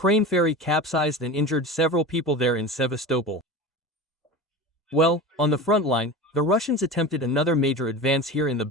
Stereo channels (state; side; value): normal; both; correlation 0.30